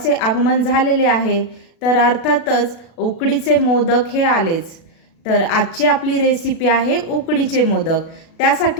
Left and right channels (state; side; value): late; right; 36 ms